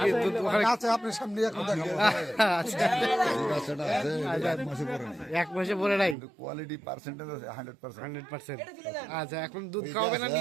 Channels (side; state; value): left; drops out; at 6.2 s